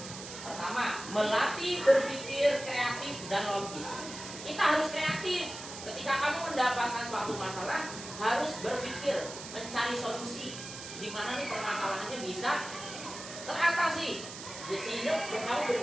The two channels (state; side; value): noise; right; hiss, 11 dB below the sound